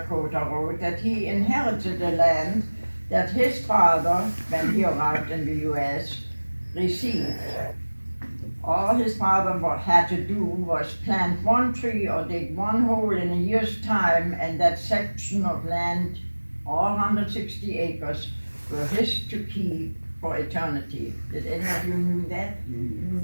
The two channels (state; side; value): inverted; both; correlation -1.00